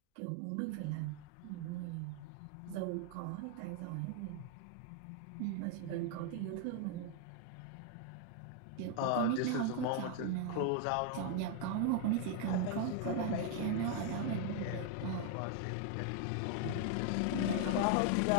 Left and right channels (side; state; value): both; different; correlation 0.00